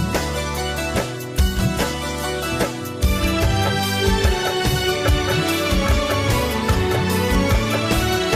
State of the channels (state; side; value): identical; both; correlation 1.00